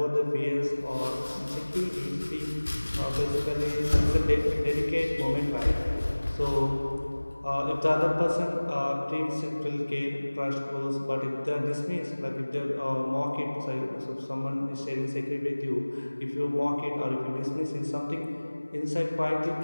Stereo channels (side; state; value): both; inverted; correlation -1.00